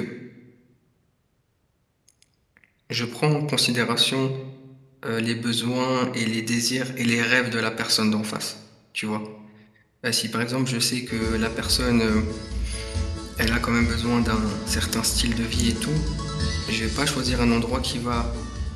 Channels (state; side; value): identical; both; correlation 1.00